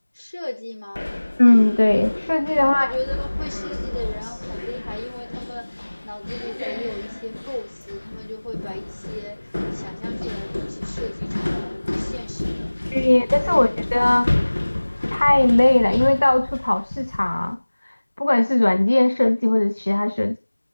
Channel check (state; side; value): inverted; both; correlation -1.00